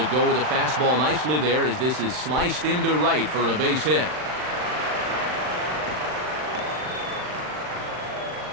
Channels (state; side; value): late; left; 39 ms